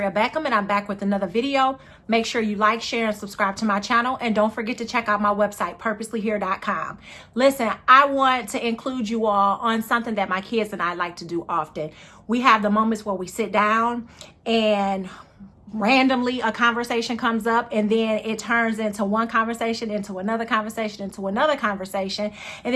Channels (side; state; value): both; identical; correlation 1.00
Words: Beckham, and I'm back with another video. Make sure you like, share, and subscribe to my channel, and don't forget to check out my website, purposelyhere.com. Listen, I want to include you all on something that my kids and I like to do often. We have the moments where we sit down and randomly a conversation comes up, and then it turns into one conversation, into another conversation, into another conversation. And